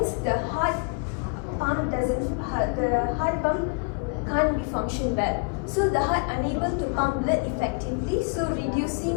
the heart pump can't be function well. So the heart unable to pump blood effectively, so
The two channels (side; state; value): right; quieter; 33.9 dB